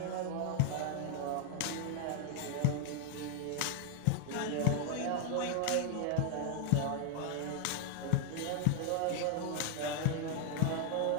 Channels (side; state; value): both; different; correlation 0.00